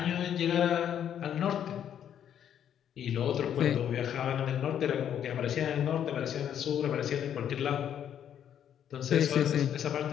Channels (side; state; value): right; quieter; 9.5 dB